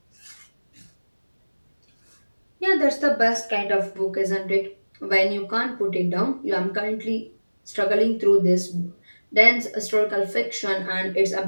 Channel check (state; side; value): inverted; both; correlation -1.00